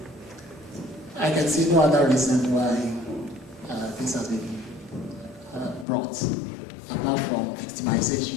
I can see no other reason why this has been brought, apart from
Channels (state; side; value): drops out; right; at 5.9 s